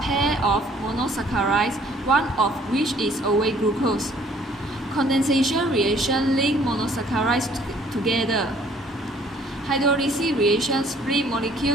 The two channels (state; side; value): normal; both; correlation 0.59